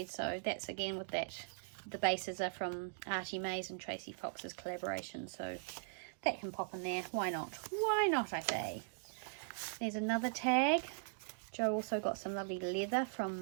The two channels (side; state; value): left; silent; digital silence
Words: so that's again with that. The bases are from Artie Mays and Tracy Fox's collaboration, so that can pop in there. Why not? Why not, I say. There's another tag. Jo also got some lovely leather